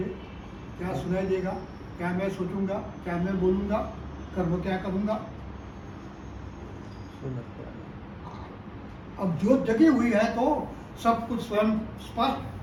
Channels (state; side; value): identical; both; correlation 1.00